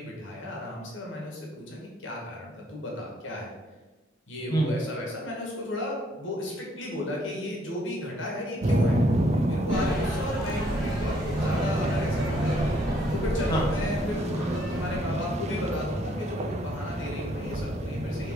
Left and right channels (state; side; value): normal; both; correlation 0.67